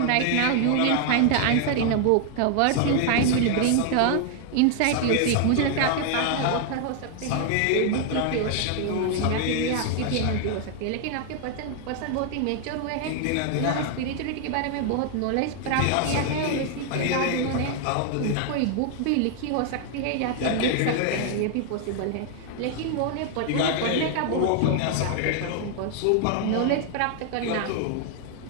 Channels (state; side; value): different; both; correlation 0.00